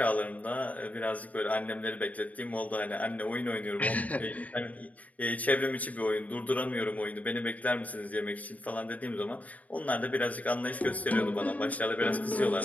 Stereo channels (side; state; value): right; late; 0.071 ms